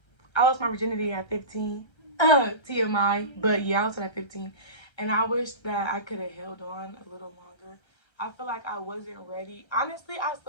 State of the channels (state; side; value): late; right; 1.3 ms